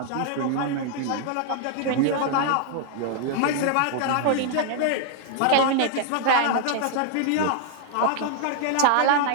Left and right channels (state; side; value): different; both; correlation 0.00